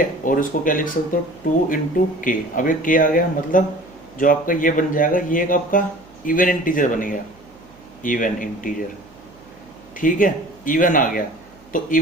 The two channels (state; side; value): noise; right; hum, 29 dB below the sound